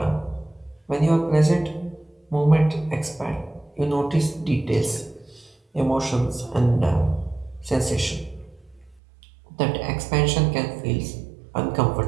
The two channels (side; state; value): left; drops out; at 9.0 s